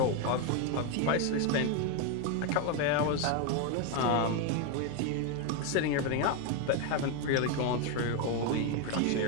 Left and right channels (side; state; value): both; different; correlation 0.02